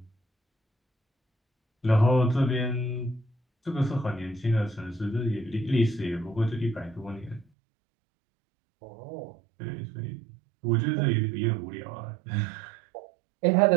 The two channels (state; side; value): drops out; left; at 7.5 s